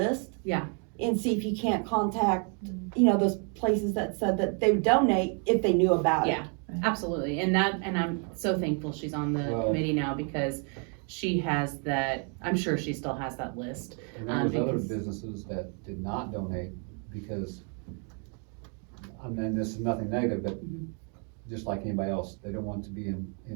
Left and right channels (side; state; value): left; quieter; 39.7 dB